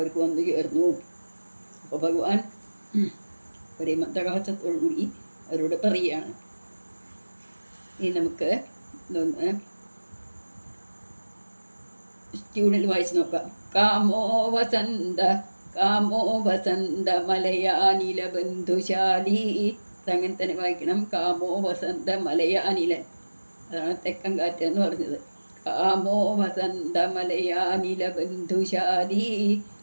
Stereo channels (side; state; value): both; inverted; correlation -1.00